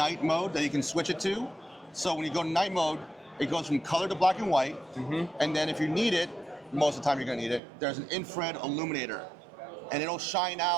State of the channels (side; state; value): left; drops out; at 7.6 s